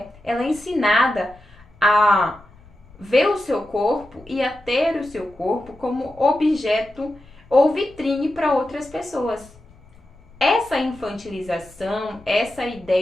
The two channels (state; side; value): noise; left; rumble, 25 dB below the sound